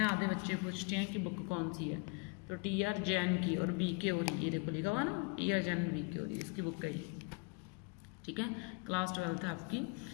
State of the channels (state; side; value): quieter; right; 32.3 dB